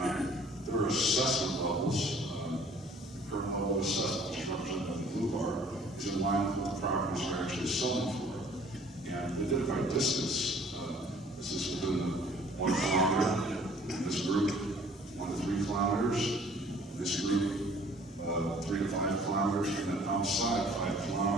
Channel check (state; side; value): normal; both; correlation 0.54